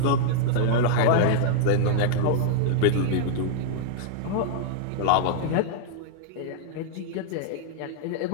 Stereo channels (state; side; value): different; both; correlation -0.01